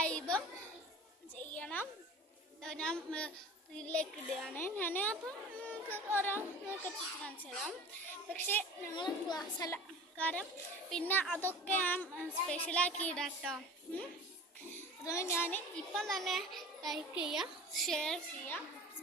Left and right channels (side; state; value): both; normal; correlation 0.39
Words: ചെയ്യണം. ഞാൻ ഇതിലേക്ക് ഇടുകയാണ്. ഞാൻ അപ്പം ഓരോ കാണിച്ചു തരാം. പക്ഷേ ഞങ്ങൾ ക്ലാസ് അല്ല, കാരണം പിന്നെ അതൊക്കെ ഞാൻ സ്പെഷ്യലാക്കി ഇടാം കേട്ടോ. അതുകൊണ്ട് ഞാൻ ഇപ്പം തന്നെ ലൈക്ക് ചെയ്യുക, ഷെയർ ചെയ്യുക,